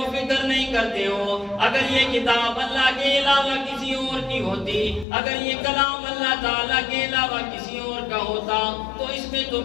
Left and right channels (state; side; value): drops out; right; at 5.1 s